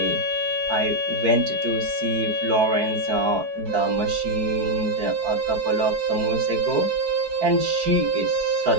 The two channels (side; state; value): left; late; 4.6 ms